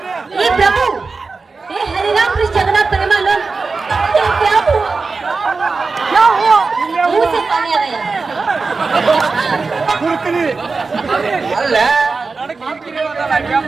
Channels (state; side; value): quieter; left; 4.2 dB